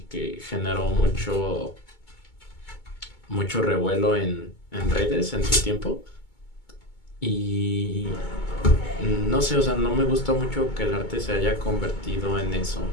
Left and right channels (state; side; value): late; right; 2.2 ms